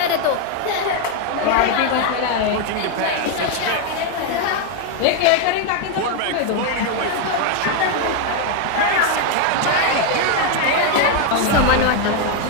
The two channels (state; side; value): different; both; correlation 0.01